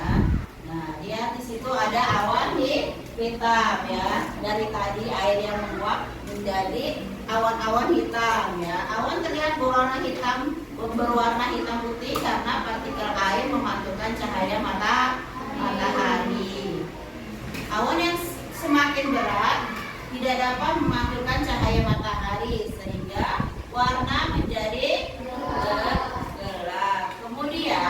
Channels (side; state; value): both; identical; correlation 1.00